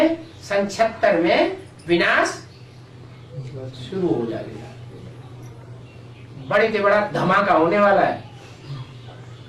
सन 76 में विनाश शुरू हो जाएगा। बड़े से बड़ा धमाका होने वाला है।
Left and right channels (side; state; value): both; identical; correlation 1.00